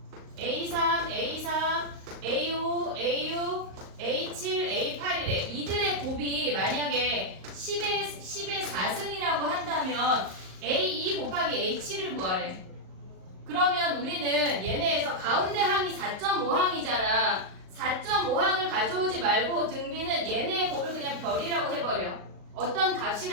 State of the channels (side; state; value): left; late; 38 ms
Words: A3, A4, A5, A6, A7, A8이래. 이들의 곱이 만약에 10의 4승이라고 한다면 A2 곱하기 A7을 구하래. 그러면 우리는 얘네에서 가운데 항이 4.5항이잖아. 4.5항을 가져오지 말고 등비는 얘네의 곱을 그냥 별이라고 해버려. 어떤